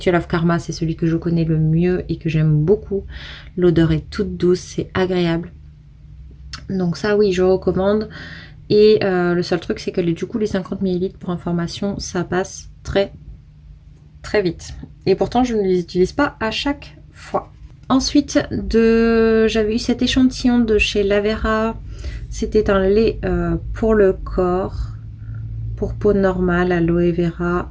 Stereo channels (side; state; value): both; identical; correlation 1.00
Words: of Karma, c'est celui que je connais le mieux et que j'aime beaucoup. L'odeur est toute douce, c'est agréable. Donc ça, oui, je recommande. Et le seul truc, c'est que du coup, les 50 ml pour information, ça passe très très vite. Et pourtant, je ne les utilise pas à chaque fois. Ensuite, j'avais eu cet échantillon de chez Lavera. C'était un lait pour le corps, pour peau normale, aloe vera